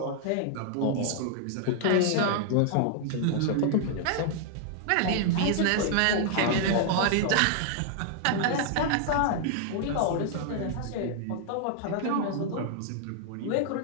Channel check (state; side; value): different; both; correlation -0.01